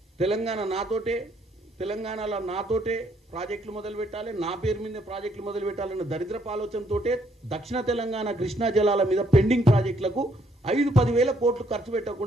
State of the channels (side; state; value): both; normal; correlation 0.69